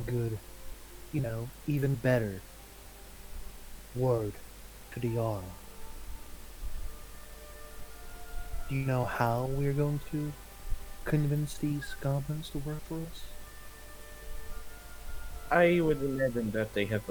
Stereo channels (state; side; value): identical; both; correlation 1.00